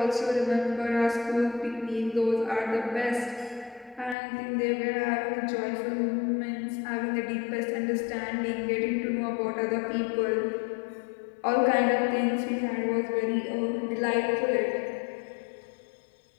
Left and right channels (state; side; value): drops out; right; at 4.2 s